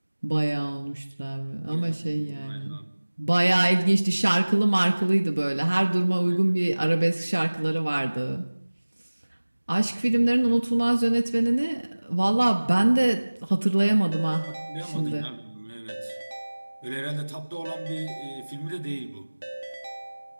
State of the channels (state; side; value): inverted; both; correlation -1.00